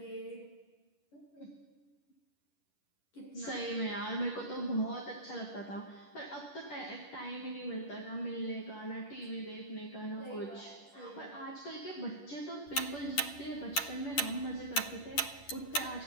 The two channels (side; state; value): right; late; 10 ms